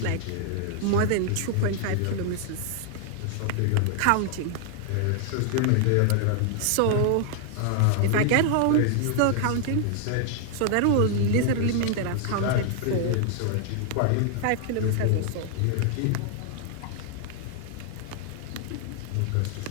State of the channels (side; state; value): both; different; correlation 0.00